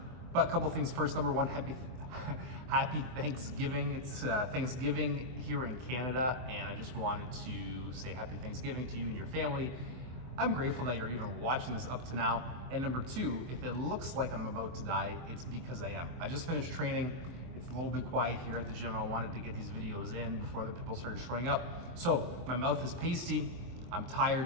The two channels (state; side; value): late; left; 24 ms